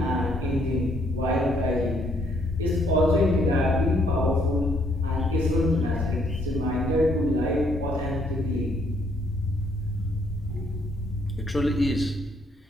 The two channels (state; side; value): normal; both; correlation 0.69